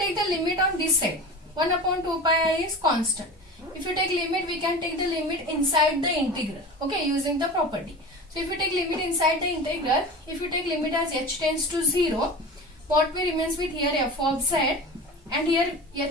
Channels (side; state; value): both; normal; correlation 0.32